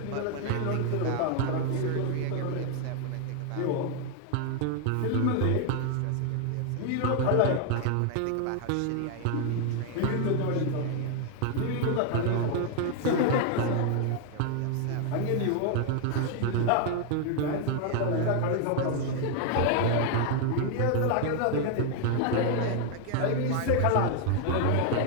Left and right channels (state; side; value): different; both; correlation 0.00